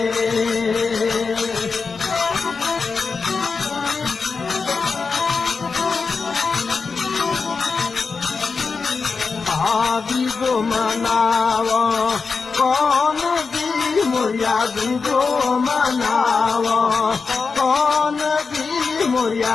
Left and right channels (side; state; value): right; quieter; 4.8 dB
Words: आदि गो मनावा कौन दी मुरिया दीदो मनावा कौन दी